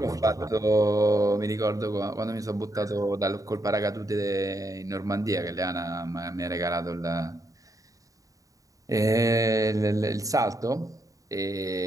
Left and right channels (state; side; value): late; left; 0.16 ms